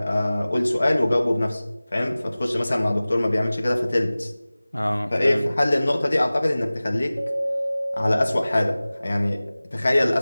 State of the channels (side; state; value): both; inverted; correlation -0.98